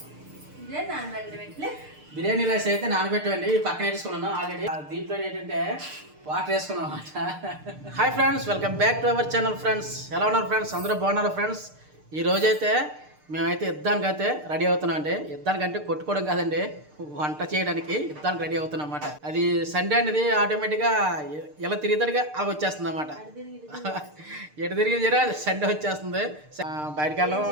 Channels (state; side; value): late; left; 6.6 ms